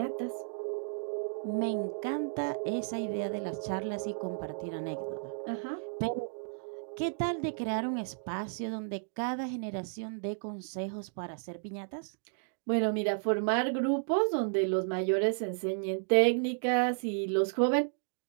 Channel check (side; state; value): left; silent; digital silence